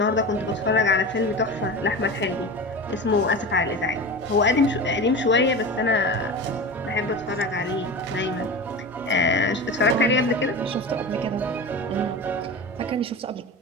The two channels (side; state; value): both; normal; correlation 0.29